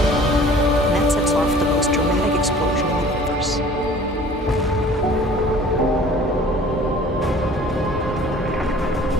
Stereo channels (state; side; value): normal; both; correlation 0.49